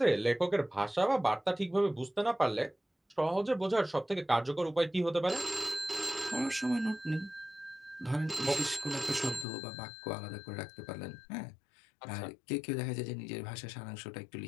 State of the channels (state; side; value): drops out; right; at 9.5 s